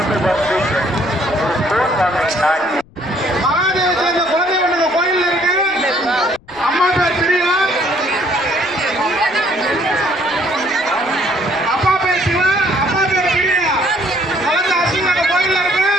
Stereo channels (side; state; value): left; noise; rumble, 27 dB below the sound